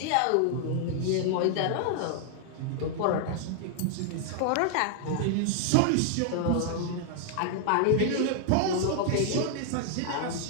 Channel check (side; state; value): both; different; correlation 0.00